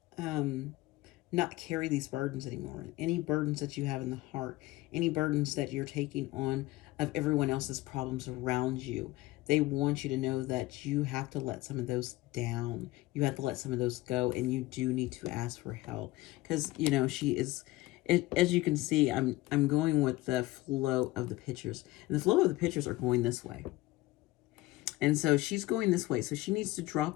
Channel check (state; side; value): quieter; right; 19.1 dB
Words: not carry these burdens anymore. Any burdens that you have in the heart, any burdens that you're taking on of everyone else's problems around you. They want you to know that you have to let some of those down. You have to let some of those go, and you do need to ask for help. Because, you know, as you can see, I'm going with the flow of the pictures. And the flow of the pictures are going this way. And so she's going this way. So she needs to